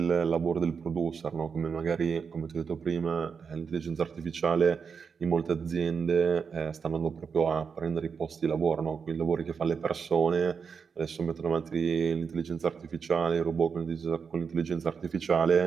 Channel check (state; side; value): quieter; left; 6.0 dB